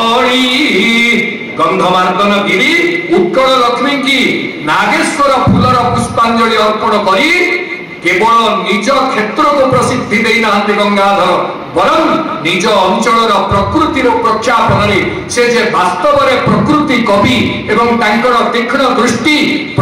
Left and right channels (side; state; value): both; identical; correlation 1.00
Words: गंधमार्दन गिरी उत्कल लक्ष्मी की नागेश्वर फूलर पुष्पांजलि अर्पण करी केवल निज क्षेत्र को प्रसिद्धि देना गंगाधर बरं निज अंचल प्रकृतिर प्रख्यापन से जे वास्तव में प्रकृति कवि एवं तांकर तीक्ष्ण दृष्टि